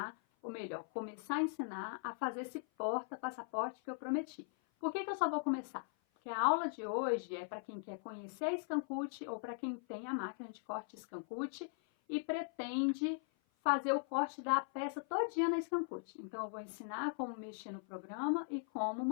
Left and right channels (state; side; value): silent; right; 51 dB below the other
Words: ou melhor, começar a ensinar a fazer esse porta-passaporte que eu prometi. Por que eu só vou começar? Porque a aula de hoje é para quem quer conhecer a Scancute ou para quem tem a máquina de corte Scancute e pretende fazer o corte da peça todinha na Scancute. Então eu vou ensinar como mexer no programa e como